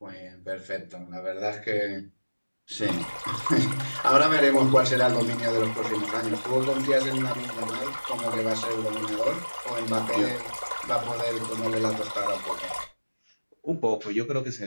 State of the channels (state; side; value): inverted; both; correlation -1.00